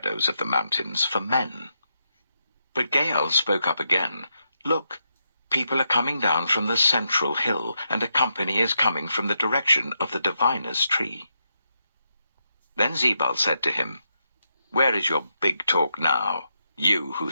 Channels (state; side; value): inverted; both; correlation -0.83